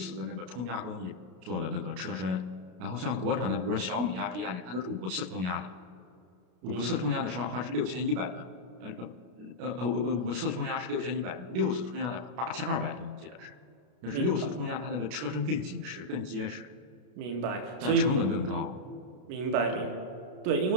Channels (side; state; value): left; late; 33 ms